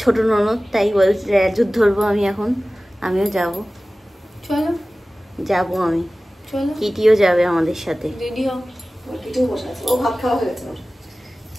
ছোট ননদ, তাই বলছি যুদ্ধ ধরবো আমি এখন। আমিও যাব, চলো যাবো আমি। চলো, কিটিও যাবে আমাদের সাথে। রেডি হও। কিটিও বসে আছে, ও ভাত খাওয়া হয়ে গেছে।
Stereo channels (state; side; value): normal; both; correlation 0.97